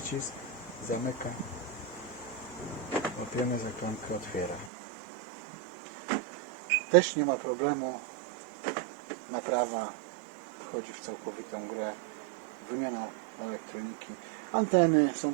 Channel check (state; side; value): drops out; left; at 4.7 s